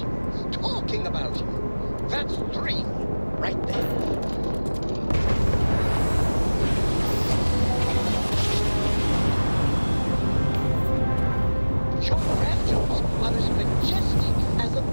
talking about you. That's 3 right there. Your raptors are as majestic as a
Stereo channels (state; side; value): inverted; both; correlation -1.00